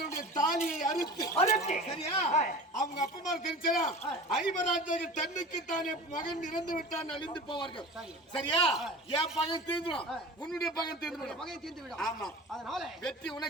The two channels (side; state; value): both; normal; correlation 0.36